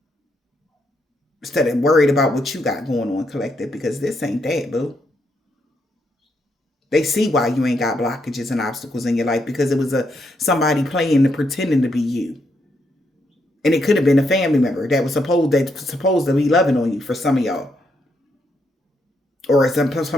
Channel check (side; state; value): both; normal; correlation 0.78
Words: Instead of worried about what you got going on, collective, because this ain't that, boo. They see why you ain't got blockages and obstacles in your life, because it was somebody playing and pretending to be you. And it could have been a family member that was supposed to be loving on you for some of y'all. Or